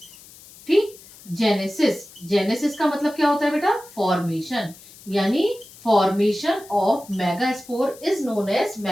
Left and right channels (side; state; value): left; noise; hiss, 21 dB below the sound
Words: ठीक, जेनेसिस, जेनेसिस का मतलब क्या होता है बेटा? फॉर्मेशन, यानी formation of megaspore is known as